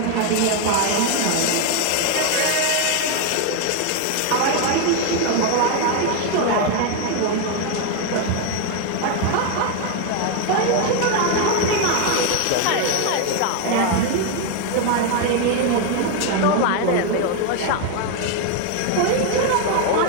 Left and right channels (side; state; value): both; different; correlation 0.01